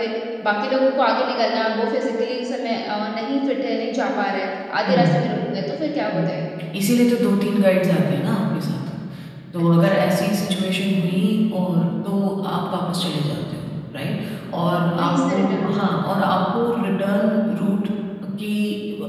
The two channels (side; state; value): both; identical; correlation 1.00